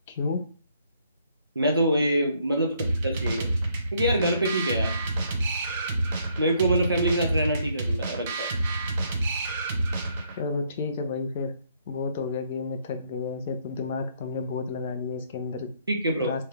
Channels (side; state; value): both; inverted; correlation -0.69